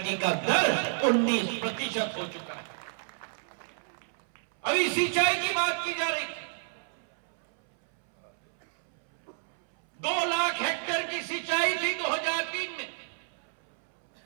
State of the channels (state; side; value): silent; left; 58 dB below the other